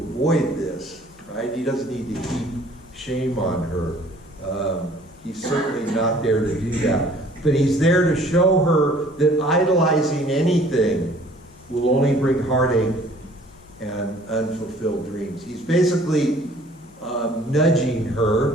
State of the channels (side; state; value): left; noise; hum, 29 dB below the sound